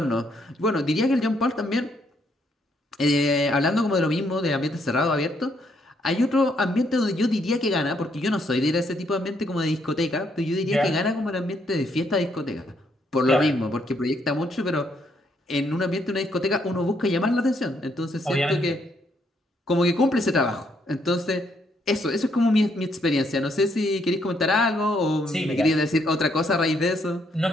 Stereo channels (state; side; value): normal; both; correlation 0.73